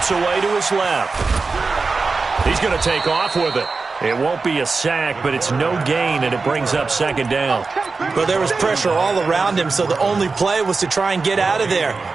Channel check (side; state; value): left; quieter; 4.2 dB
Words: away to his left. He's going to take off with it. It won't be a sack, but it's no gain, and it brings up 2nd down. Well, there was pressure all around him, so the only play was to try and get out of there.